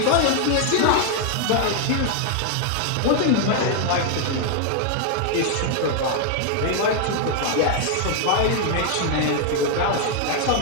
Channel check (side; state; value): both; different; correlation 0.00